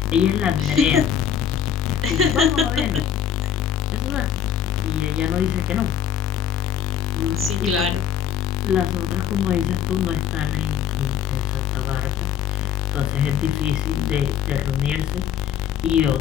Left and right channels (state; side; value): quieter; right; 8.9 dB